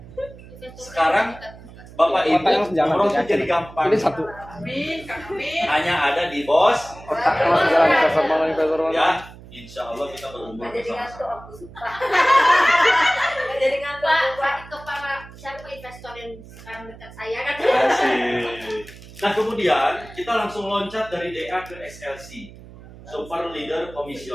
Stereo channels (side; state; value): right; noise; hum, 18 dB below the sound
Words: Sekarang Bapak Ibu Otak yang sejalan, umroh tuh yakin. jadi gampang. Ini satu. Amin, Kak Amin. Hanya ada di bos. Otak yang sejalan. Investor mana, investor mana? Ya, insya Allah kita berumur bersama-sama. aku suka. Jadi ngantuk. Pak, itu para siapa investor yang sekarang dekat saya kan? Asik. Nah kemudian kita langsung loncat dari DA ke SLC, Super Leader